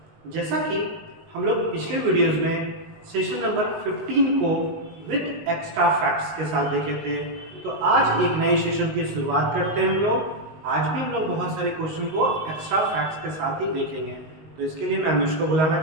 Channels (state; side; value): late; left; 19 ms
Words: जैसा कि हम लोग पिछले वीडियोस में सेशन नंबर 15 को विद एक्स्ट्रा फैक्ट्स के साथ देखे थे, तो आज एक नए सेशन की शुरुआत करते हैं हम लोग। आज भी हम लोग बहुत सारे क्वेश्चन को एक्स्ट्रा फैक्ट्स के साथ ही देखेंगे। तो इसके लिए मैं मिस को बुलाना